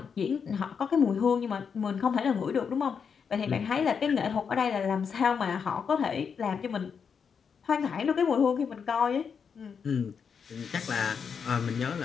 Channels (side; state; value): right; quieter; 6.5 dB